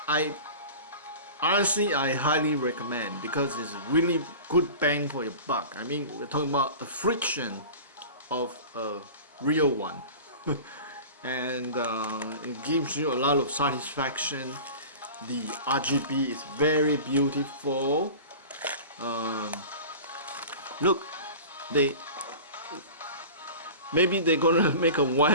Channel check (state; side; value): inverted; both; correlation -0.37